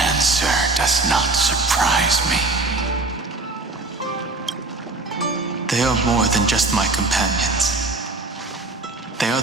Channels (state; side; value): quieter; left; 3.3 dB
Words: does not surprise me. They are more than just my companions. They are